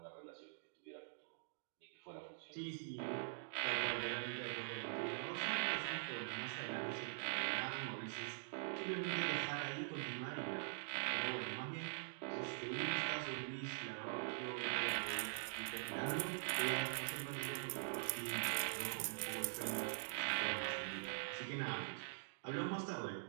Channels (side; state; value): left; silent; digital silence